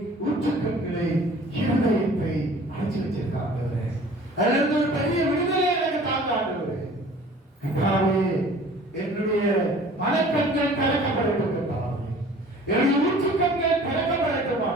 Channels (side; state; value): both; normal; correlation 0.48